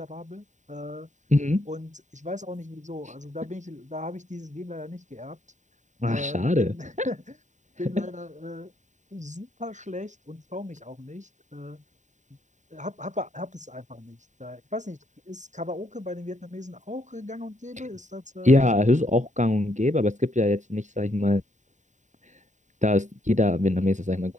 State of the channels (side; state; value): left; late; 0.35 ms